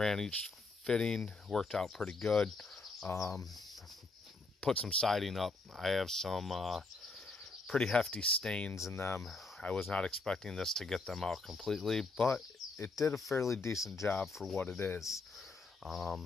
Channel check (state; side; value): quieter; right; 3.6 dB